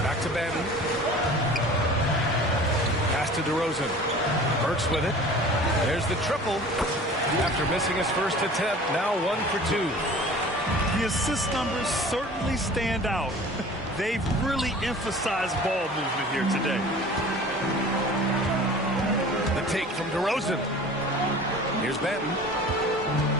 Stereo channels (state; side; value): normal; both; correlation 0.43